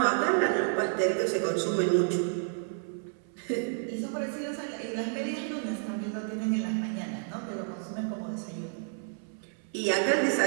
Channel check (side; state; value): left; silent; 58 dB below the other